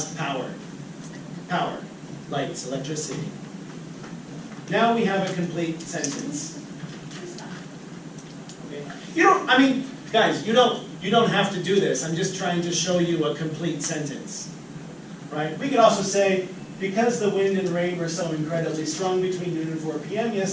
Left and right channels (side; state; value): both; identical; correlation 1.00